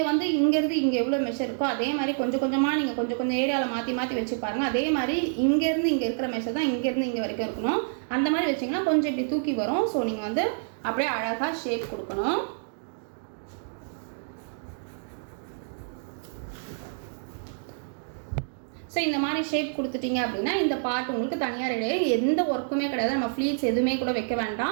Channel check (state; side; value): silent; left; digital silence